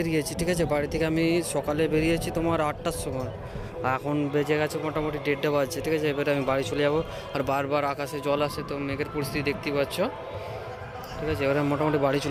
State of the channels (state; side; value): identical; both; correlation 1.00